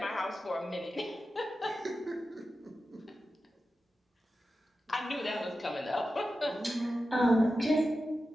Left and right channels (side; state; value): both; normal; correlation 0.92